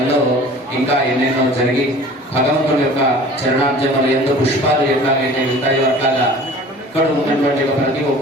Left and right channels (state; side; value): normal; both; correlation 0.45